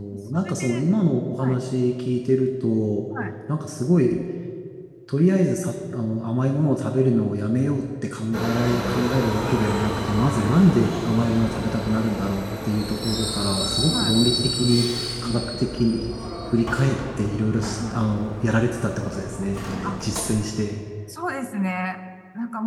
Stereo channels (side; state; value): both; identical; correlation 1.00